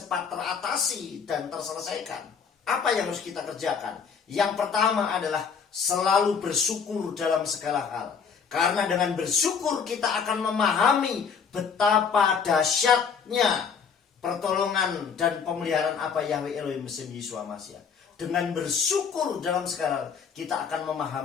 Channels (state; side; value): quieter; right; 6.3 dB